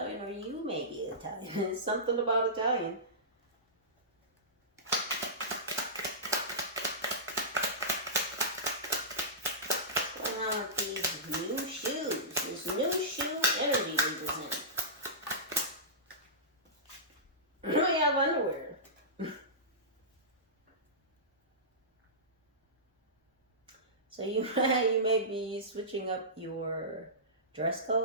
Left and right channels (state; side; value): normal; both; correlation -0.19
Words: or you may be Italian. It's something about Italian. What's going on with these new shoes? This new shoe energy represents. So you you may be switching up your dress